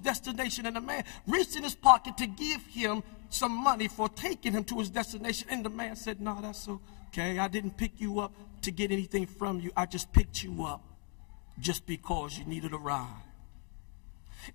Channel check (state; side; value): quieter; right; 40.0 dB